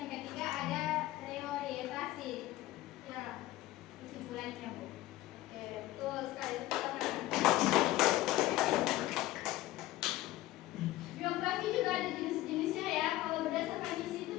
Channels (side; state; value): right; quieter; 16.4 dB